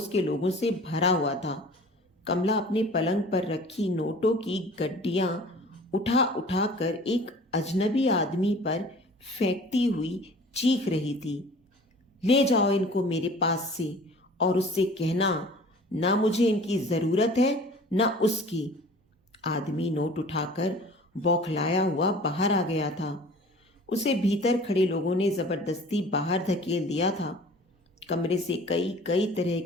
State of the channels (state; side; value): normal; both; correlation 0.46